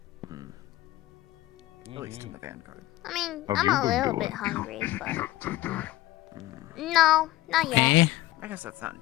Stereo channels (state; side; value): quieter; right; 16.5 dB